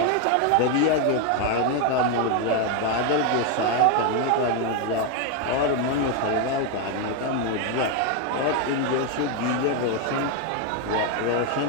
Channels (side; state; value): both; different; correlation 0.01